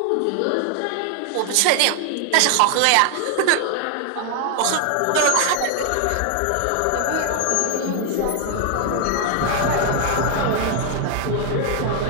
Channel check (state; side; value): different; both; correlation 0.00